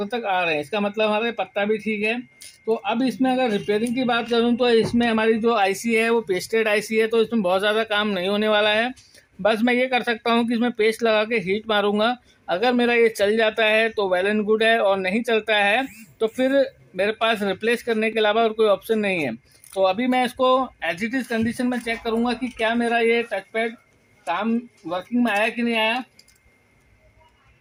तक आ रहे हैं। इसका मतलब हमारे पत्ता भी ठीक है। तो अब इसमें अगर रिपेयरिंग की बात करूं तो इसमें हमारी जो आईसी है वो पेस्टेड आईसी है, तो इसमें बहुत ज़्यादा काम नहीं होने वाला है। बस मैं ये कर सकता हूं कि इसमें पेस्ट लगा के हीट मारूंगा। अगर मेरा ये चल जाता है तो वेल एंड गुड है, और नहीं चलता है तो फिर मेरे पास रिप्लेस करने के अलावा और कोई ऑप्शन नहीं है। तो अभी मैं इसको एज इट इज़ कंडीशन में चेक करूंगा कि क्या मेरा ये टच पैड काम वर्किंग में आया कि नहीं आया।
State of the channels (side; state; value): both; identical; correlation 1.00